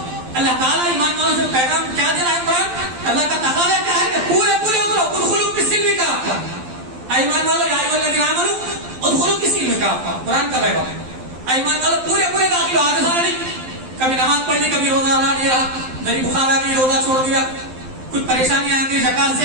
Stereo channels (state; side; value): late; left; 12 ms